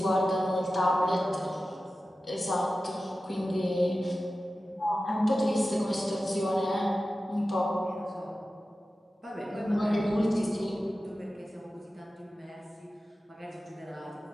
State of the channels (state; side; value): normal; both; correlation 0.94